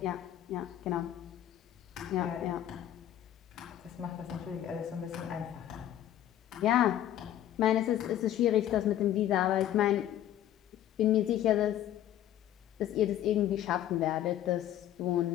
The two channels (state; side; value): quieter; right; 11.9 dB